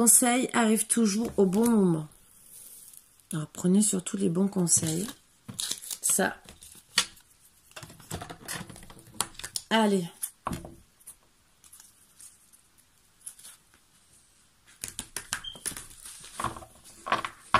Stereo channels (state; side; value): identical; both; correlation 1.00